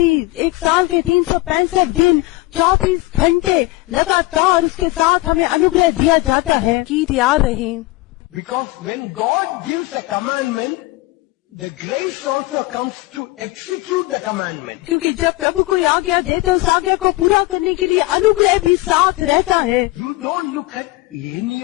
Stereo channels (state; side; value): quieter; right; 20.7 dB